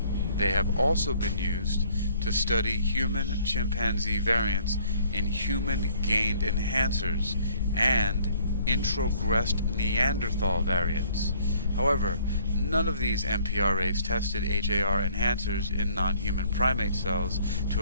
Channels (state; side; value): inverted; both; correlation -0.61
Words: They have also been used to study human-chimpanzee variants in human-gained enhancers and introgressed Neanderthal variants. However, none of these MPRAs tested HAR enhancers in non-human primate cells to